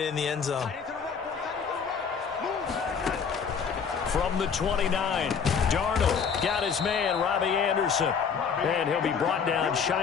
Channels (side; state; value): right; quieter; 6.4 dB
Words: in the end zone. From the 29, Darnold got his man, Robbie Anderson. And he'll be brought down